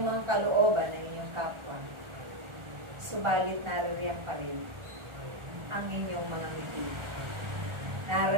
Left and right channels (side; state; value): left; late; 1.4 ms